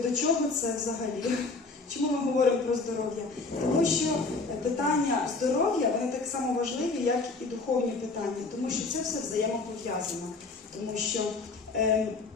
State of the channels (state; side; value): quieter; right; 3.8 dB